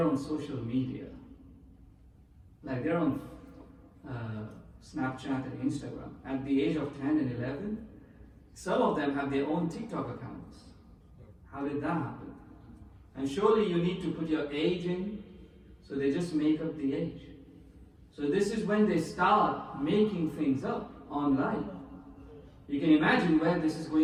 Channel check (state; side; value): identical; both; correlation 1.00